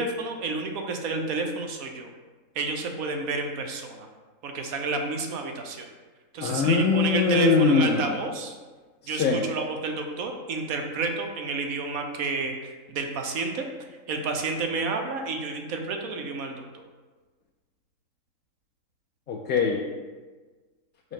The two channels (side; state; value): left; late; 4.1 ms